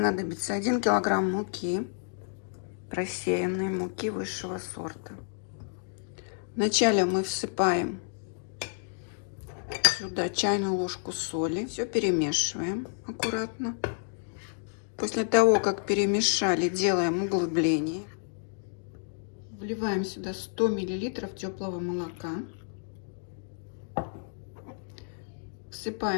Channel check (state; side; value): silent; right; digital silence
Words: 1 килограмм муки, просеянной муки высшего сорта. Вначале мы всыпаем сюда чайную ложку соли. Все перемешиваем аккуратно. После того, как перемешали, делаем углубление. Вливаем сюда 100 миллилитров теплого молока.